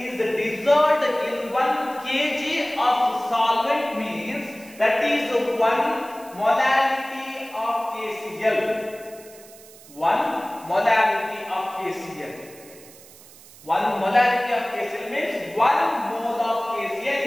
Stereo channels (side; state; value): right; noise; hiss, 21 dB below the sound